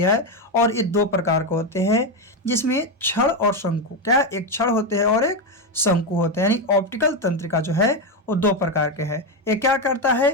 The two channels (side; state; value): both; normal; correlation 0.09